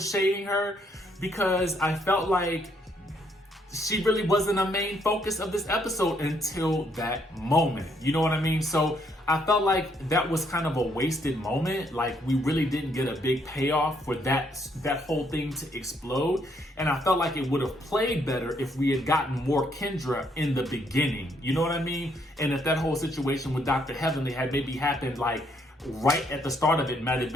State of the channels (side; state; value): both; normal; correlation 0.71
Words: shading her, because I felt like she really wasn't a main focus of this episode until that moment. You know what I mean? So I felt like that was kind of a wasted moment. Like we really didn't get a big payoff for that whole thing to explode. And I felt like it would have played better if we had gotten more Kendra in the beginning. You know what I mean? And if that whole situation with Dr. Heavenly had maybe happened like right at the start of it, might have